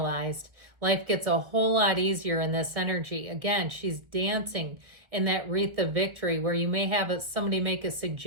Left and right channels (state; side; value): late; left; 1.6 ms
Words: Life gets a whole lot easier in this energy. Again, she's dancing in that wreath of victory where you may have somebody make a